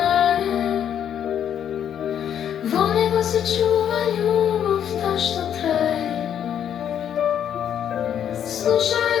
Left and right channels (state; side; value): quieter; right; 9.4 dB